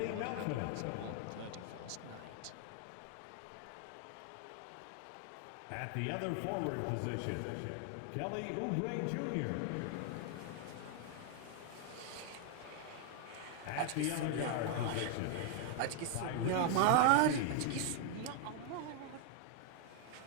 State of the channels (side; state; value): both; different; correlation 0.00